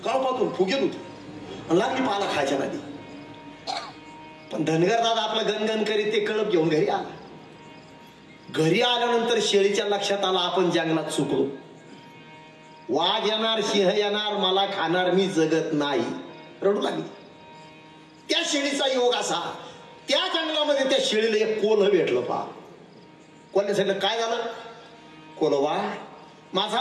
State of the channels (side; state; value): both; identical; correlation 1.00